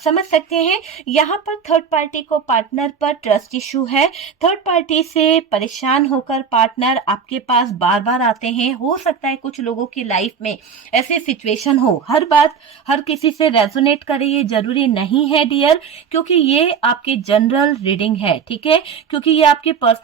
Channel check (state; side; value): quieter; left; 6.6 dB